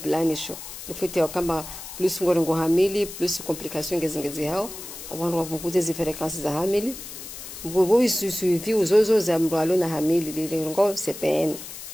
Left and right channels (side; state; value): left; noise; hiss, 12 dB below the sound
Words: nifute wakamba plus ngorengo hamili plus complication ngezingezi hao abantu wavunguza izi frequences za hamili ngobo isuivi uzozo za mrwalo na hamili lilengo CPN